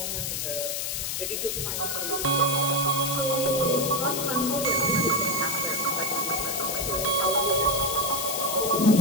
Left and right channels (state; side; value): noise; left; hiss, 2 dB below the sound